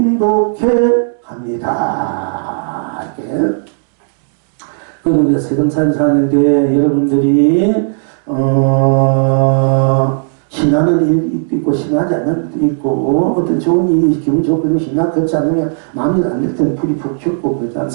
합니다. 이렇게. 그리고 우리가 세상살이 사는데 여러분들이 신나는 일도 있고 신나지 않는 일도 있고 어떤 좋은 일이 기분 좋고 신나 그렇지 않으면 마음이 안 될 때는 불이 푹 튀고 그렇지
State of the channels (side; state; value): left; silent; digital silence